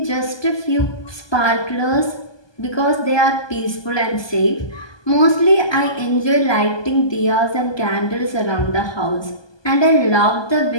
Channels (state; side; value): late; right; 1.2 ms